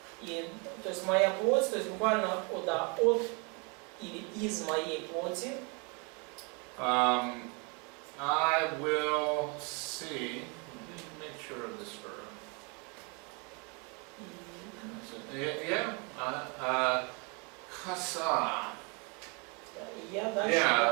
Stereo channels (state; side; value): quieter; left; 32.6 dB